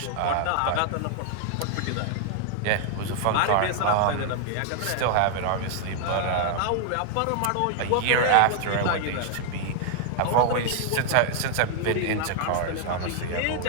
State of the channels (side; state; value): both; different; correlation 0.00